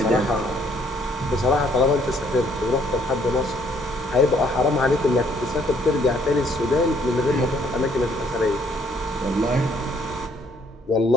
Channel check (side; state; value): both; normal; correlation 0.65